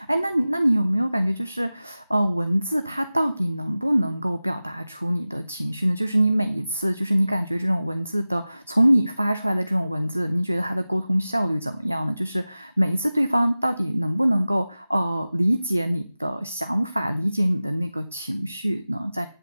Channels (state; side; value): inverted; both; correlation -0.96